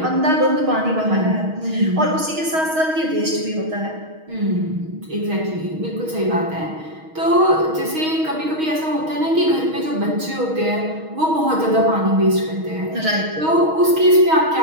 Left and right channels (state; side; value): late; left; 6.3 ms